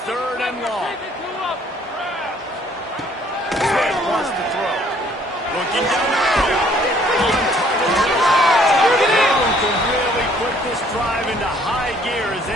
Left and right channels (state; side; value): normal; both; correlation 0.60